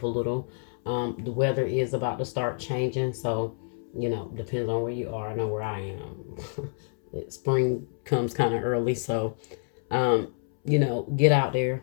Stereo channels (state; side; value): silent; right; 60 dB below the other